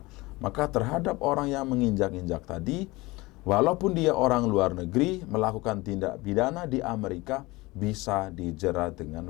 Maka terhadap orang yang menginjak-injak tadi, walaupun dia orang luar negeri melakukan tindak pidana di Amerika, bisa dijerat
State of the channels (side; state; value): right; quieter; 21.8 dB